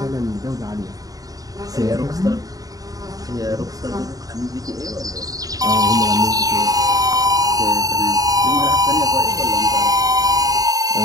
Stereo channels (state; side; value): late; left; 0.18 ms